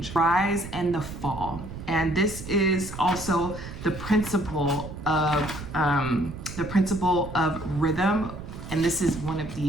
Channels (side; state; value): right; noise; rumble, 11 dB below the sound